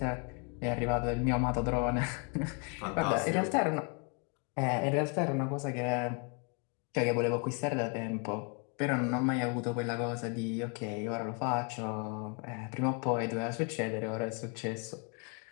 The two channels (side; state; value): right; quieter; 36.3 dB